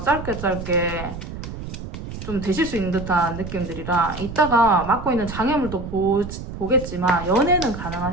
좀 되실 수 있는 듯한 느낌들이라, 이따가 맡고 있는 장애물도 보겠지만 연애는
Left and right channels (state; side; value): noise; right; rumble, 9 dB below the sound